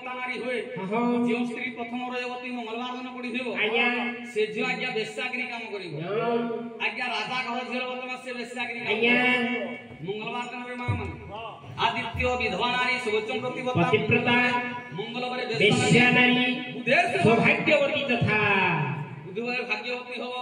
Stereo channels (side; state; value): both; identical; correlation 1.00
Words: नारी होए जो स्त्री प्रथम रविवार मंगलवार दिन पड़िथिबो से जो आज्ञा वेश्यागिरी काम करिवो आज्ञा राजा घर झेल बतमा से वेश्यागिरी मंगलवार दिन रे मां माने आदित्य विधवा नारी सुवचन प्रतिव्रता मंगलवार वेश्या नारी सौभाग्यवती तथा बुधवार भाग्यवती हो